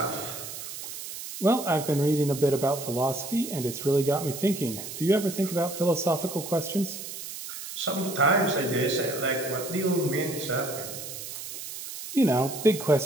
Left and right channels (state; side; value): noise; right; hiss, 9 dB below the sound